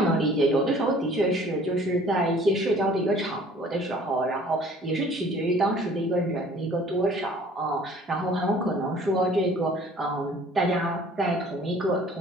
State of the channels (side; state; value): both; normal; correlation 0.52